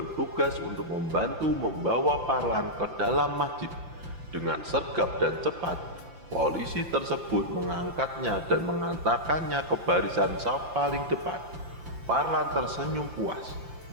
untuk membantu membawa Parlan ke dalam masjid. Dengan sergap dan cepat, polisi tersebut mengangkatnya dan mengantarkannya ke barisan saf paling depan. Parlan tersenyum puas,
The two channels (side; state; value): left; late; 5.8 ms